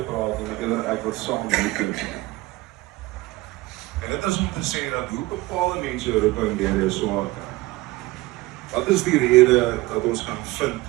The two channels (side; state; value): left; quieter; 20.1 dB